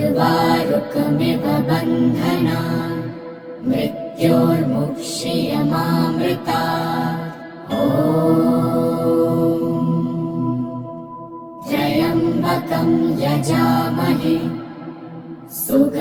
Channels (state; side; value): identical; both; correlation 1.00